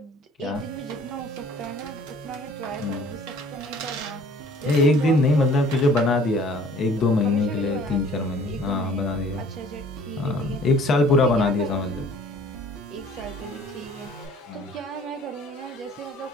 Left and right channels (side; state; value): both; normal; correlation 0.53